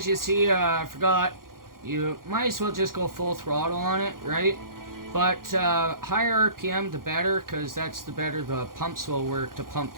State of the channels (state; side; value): late; left; 0.91 ms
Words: you see, I forgot, you might as well just go full throttle on it, right? But higher RPM the better, because that's the better the pumps will work to pump